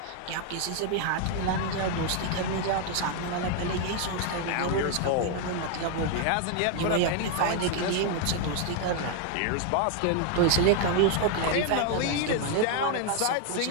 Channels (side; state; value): both; different; correlation 0.01